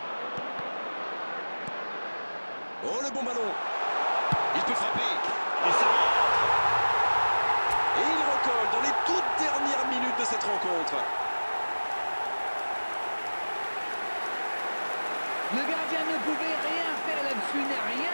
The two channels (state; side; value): inverted; both; correlation -1.00